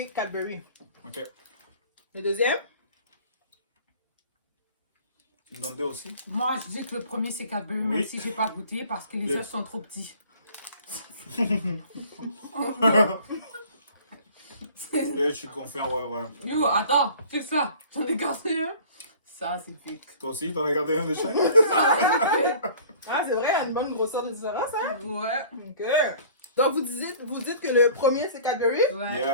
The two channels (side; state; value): both; inverted; correlation -0.48